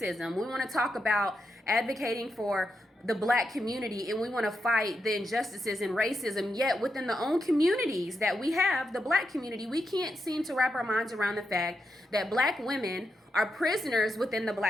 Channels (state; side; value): normal; both; correlation 0.85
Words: We want to talk about advocating for the black community, and we want to fight the injustices and racism. Yet within the own communities that we have, the black community, we can't seem to wrap our minds around the fact that black women are prisoners within the